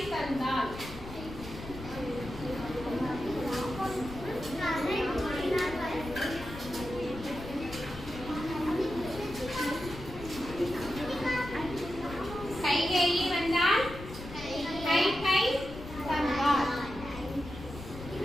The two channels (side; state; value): left; noise; rumble, 12 dB below the sound